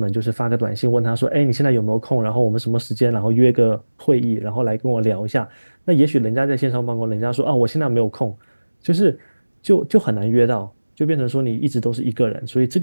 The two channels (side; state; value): both; inverted; correlation -1.00